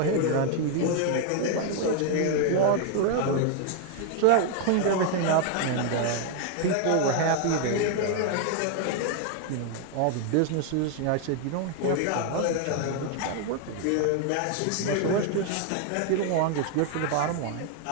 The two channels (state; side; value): different; both; correlation 0.00